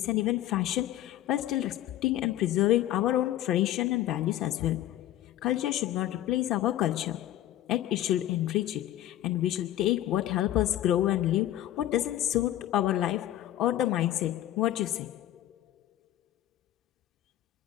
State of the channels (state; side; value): quieter; right; 13.5 dB